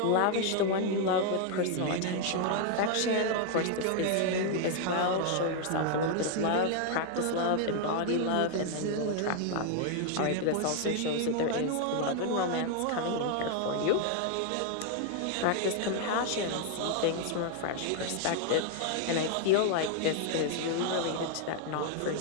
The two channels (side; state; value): both; different; correlation 0.00